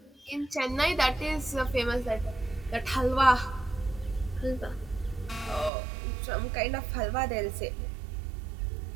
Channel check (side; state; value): left; drops out; at 5.7 s